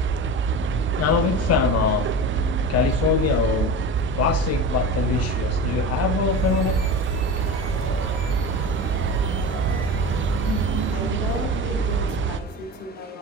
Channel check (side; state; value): both; normal; correlation 0.30